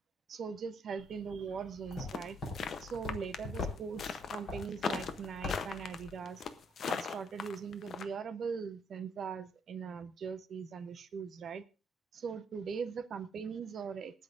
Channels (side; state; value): both; normal; correlation 0.69